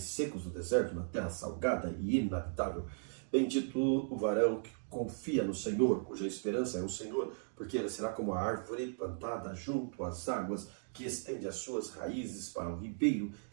secos do deserto, na terra salgada e inabitável. Bendito o varão que confia no Senhor, cuja esperança é o Senhor, porque ele será como a árvore plantada junto às águas, que estende as suas raízes para o ribeiro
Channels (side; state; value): left; silent; digital silence